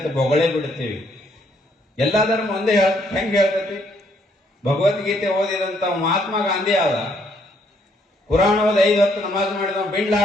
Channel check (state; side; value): normal; both; correlation 0.70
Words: ಬೊಗಳೇ ಬಿಡ್ತೀವಿ. ಎಲ್ಲಾ ಧರ್ಮ ಒಂದೇ ಹೆಂಗ್ ಹೇಳ್ತೈತಿ? ಭಗವದ್ಗೀತೆ ಓದಿದಂತ ಮಹಾತ್ಮ ಗಾಂಧಿ ಆದ, ಪುರಾಣ ಓದಿ 5 ಹೊತ್ತು ನಮಾಜ್ ಮಾಡಿದ ಬಿಲ್